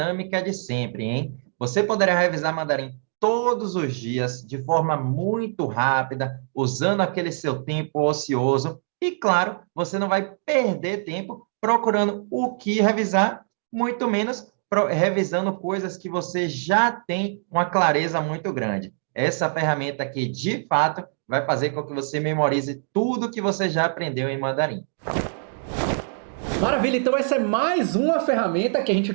de sempre, hein? Você poderá revisar mandarim todos os dias, de forma muito rápida, usando aquele seu tempo ocioso. E, claro, você não vai perder tempo procurando o que revisar, muito menos revisando coisas que você já tem uma clareza muito grande. Essa ferramenta aqui, de fato, vai fazer com que você memorize tudo que você já aprendeu em mandarim. Maravilha, então essa é mais uma ferramenta que a gente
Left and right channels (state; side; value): silent; left; digital silence